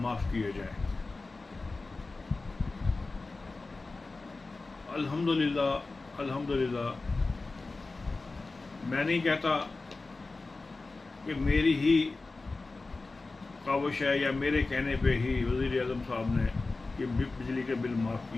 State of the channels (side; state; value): right; quieter; 3.5 dB